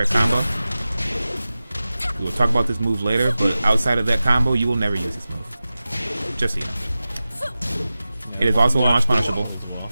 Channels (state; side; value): inverted; both; correlation -0.95